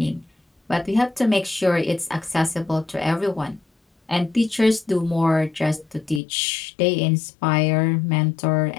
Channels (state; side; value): drops out; right; at 6.2 s